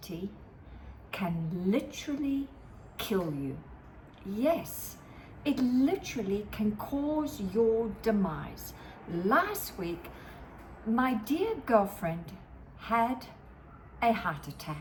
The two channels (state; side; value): identical; both; correlation 1.00